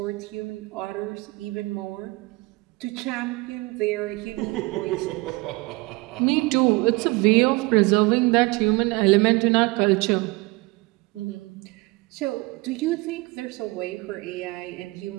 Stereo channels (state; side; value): quieter; left; 24.0 dB